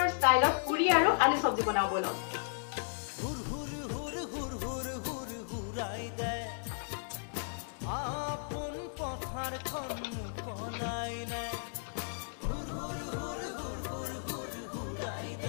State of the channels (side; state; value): right; silent; digital silence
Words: ষ্টাইলত পুৰি আৰু আলু চব্জি বনাও বলক হুৰ হুৰ হুৰ হুৰ হুৰ হুৰ হুৰাই দে আপোন পথাৰখন মুকলাই নাই হুৰ হুৰ হুৰ হুৰ হুৰ হুৰ হুৰাই